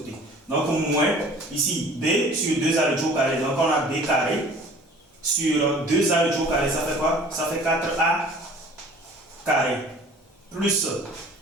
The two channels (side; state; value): both; normal; correlation 0.48